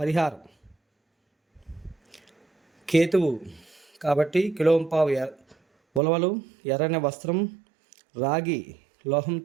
పరిహారం: కేతువు కాబట్టి కిలోంపావు ఉలవలు, ఎర్రని వస్త్రం, రాగి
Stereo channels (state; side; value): drops out; left; at 6.0 s